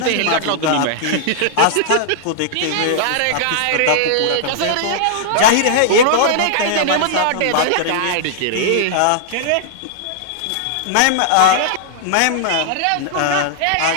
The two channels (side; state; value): both; different; correlation -0.01